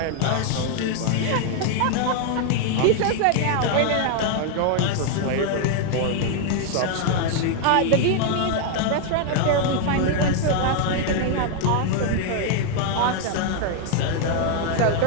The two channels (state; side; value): different; both; correlation 0.00